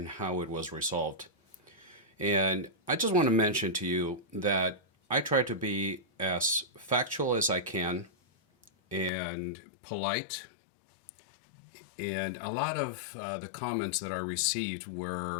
how it was resolved. And I just want to mention to you that I try to be as factual as I can and polite. And a lot of the comments that I received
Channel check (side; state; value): right; drops out; at 9.1 s